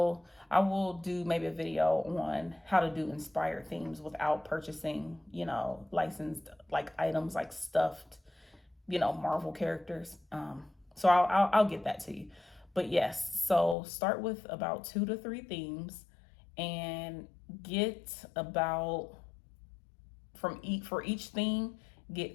do maybe a video on how to do inspired themes without purchasing, licensed like items, like stuffed, Marvel characters. So I'll get that to you. But yes, so start with about two to three themes, and get about for each theme,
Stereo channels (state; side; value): drops out; right; at 13.8 s